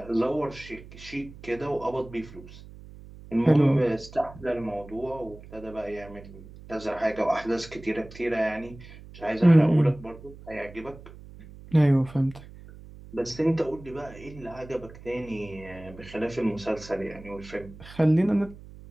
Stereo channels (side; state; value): right; noise; hum, 18 dB below the sound